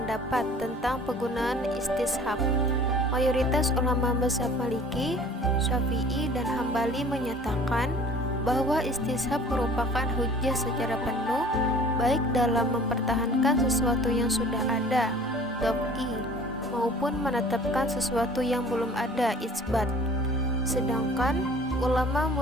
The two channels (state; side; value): normal; both; correlation 0.48